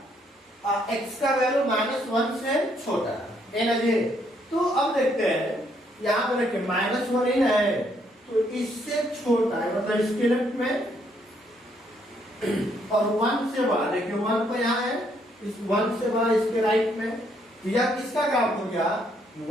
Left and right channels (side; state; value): both; normal; correlation 0.71